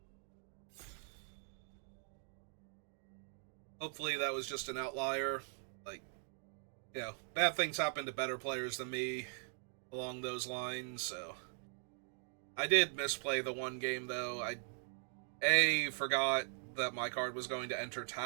hopefully that was just an outlier. Like, you know, bad things happen to better players than me along those lines, so I did misplay the one game, though. I, A, forgot that my card was going to enter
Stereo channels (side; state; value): left; silent; 51 dB below the other